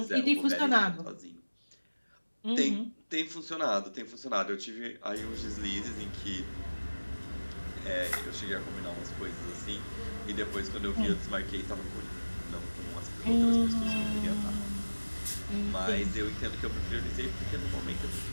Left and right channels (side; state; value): both; inverted; correlation -1.00